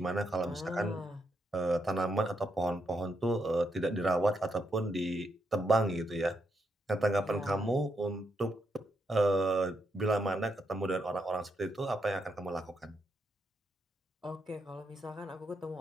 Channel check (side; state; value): both; normal; correlation 0.80